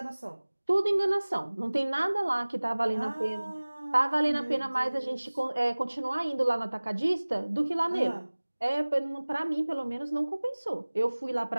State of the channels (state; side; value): inverted; both; correlation -1.00